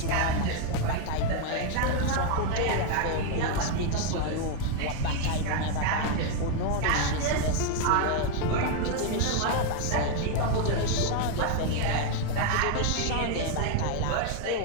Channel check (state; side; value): different; both; correlation 0.01